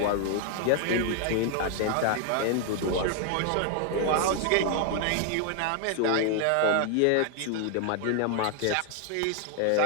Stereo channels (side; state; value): both; different; correlation 0.00